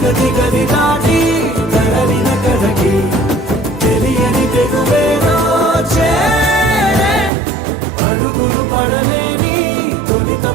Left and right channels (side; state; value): left; drops out; at 7.3 s